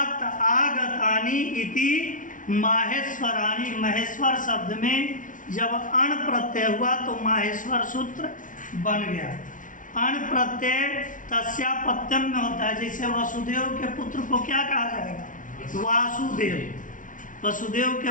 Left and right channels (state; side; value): late; right; 0.38 ms